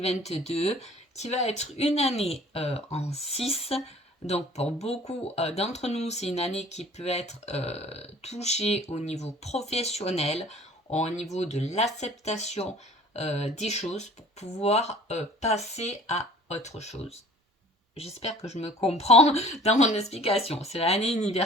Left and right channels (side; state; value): both; normal; correlation 0.50